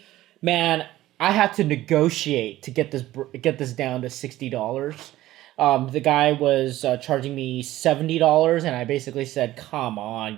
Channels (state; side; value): quieter; left; 15.4 dB